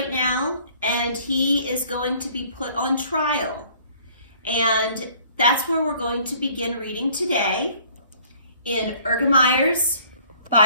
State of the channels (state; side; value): inverted; both; correlation -0.57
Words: now, and he is going to be put on trial. And that's where we're going to begin reading today in Ergemeyer's